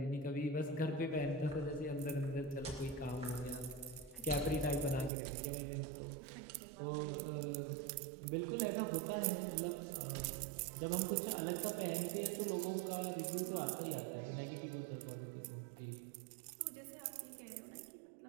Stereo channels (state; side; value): drops out; left; at 5.1 s